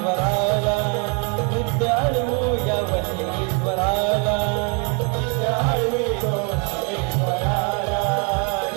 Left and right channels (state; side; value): quieter; left; 36.2 dB